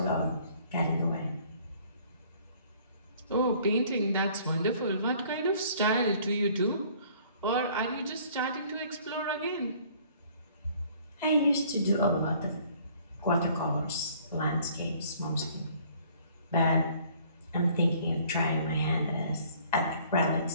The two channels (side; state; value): both; inverted; correlation -0.57